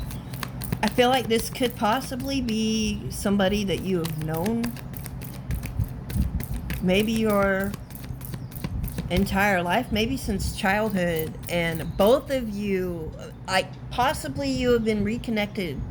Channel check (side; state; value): both; identical; correlation 1.00